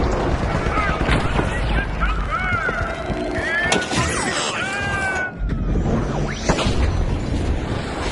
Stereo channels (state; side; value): identical; both; correlation 1.00